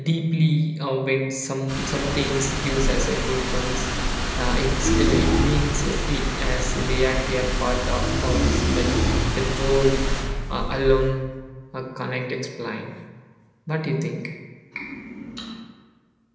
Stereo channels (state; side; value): identical; both; correlation 1.00